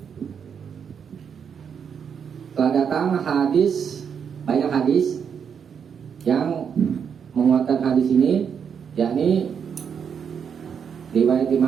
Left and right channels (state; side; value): quieter; left; 7.2 dB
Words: telah datang hadis, banyak hadis yang menguatkan hadis ini, yakni riwayat